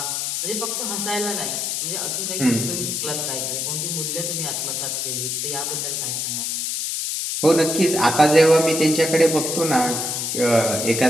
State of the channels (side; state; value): left; noise; hiss, 1 dB below the sound